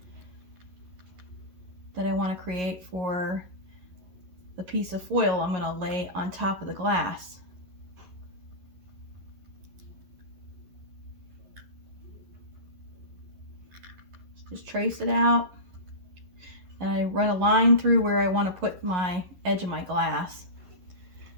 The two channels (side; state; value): left; late; 11 ms